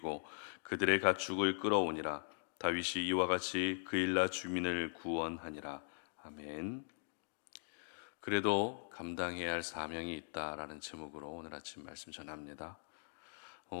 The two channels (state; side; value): silent; right; digital silence